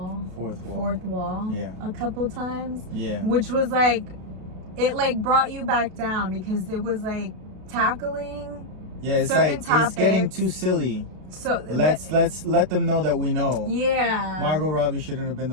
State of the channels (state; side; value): late; left; 32 ms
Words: wall. Yeah. A couple times. Yeah. Which was like, it like brought you back down because it was like tackling. Yeah, it's certain like topics. It's getting too silly. So let's let them know that we know. Yeah. Margot Robbie shouldn't have been